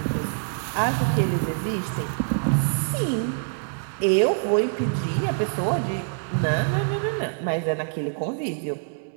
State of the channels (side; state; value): left; silent; 61 dB below the other